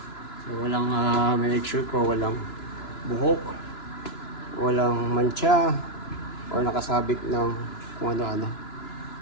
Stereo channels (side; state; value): right; late; 2.9 ms